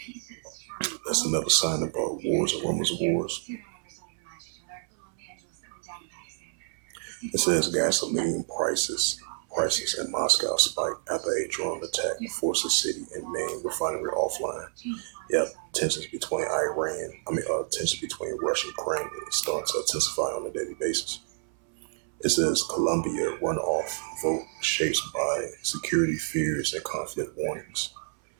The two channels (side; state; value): left; silent; 59 dB below the other